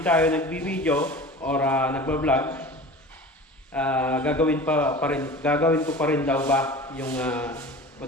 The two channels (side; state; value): both; normal; correlation 0.37